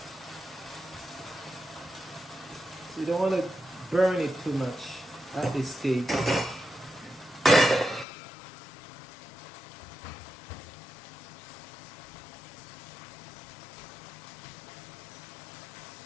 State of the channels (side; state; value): right; drops out; at 8.1 s